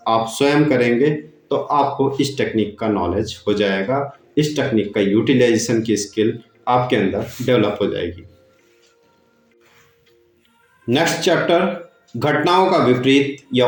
आप स्वयं करेंगे तो आपको इस टेक्निक का नॉलेज हो जाएगा, इस टेक्निक का यूटिलाइजेशन की स्किल आपके अंदर डेवलप हो जाएगी। नेक्स्ट चैप्टर, घटनाओं का विपरीत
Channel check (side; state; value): both; identical; correlation 1.00